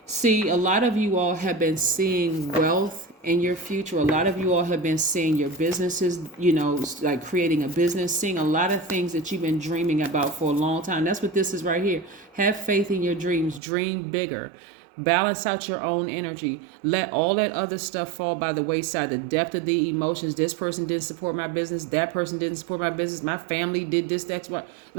See, a lot of you all have been seeing wealth in your future. A lot of you all have been seeing your businesses, like creating a business, seeing a lot of things that you've been dreaming about for a long time. That's what this is right here. Have faith in your dreams. Dream bigger. Balance out your own energy. Let all that other stuff fall by the wayside. The depth of the emotions. This person didn't support my business. That person didn't support my business. My family did this, that's what.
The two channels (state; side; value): drops out; left; at 13.6 s